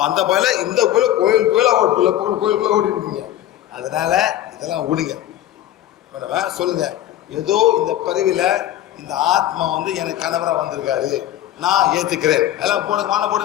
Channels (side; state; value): right; quieter; 12.8 dB